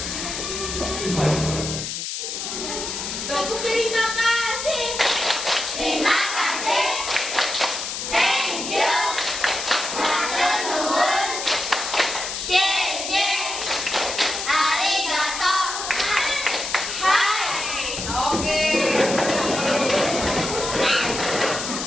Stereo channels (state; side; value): noise; left; hiss, 5 dB below the sound